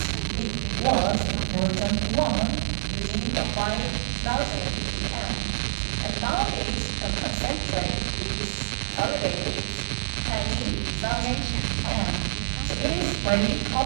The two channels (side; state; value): left; silent; digital silence